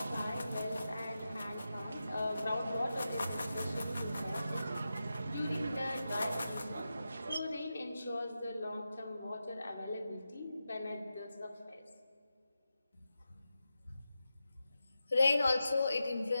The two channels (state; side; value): inverted; both; correlation -0.91